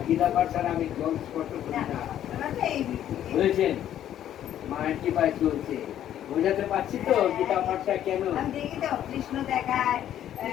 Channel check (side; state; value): right; quieter; 11.1 dB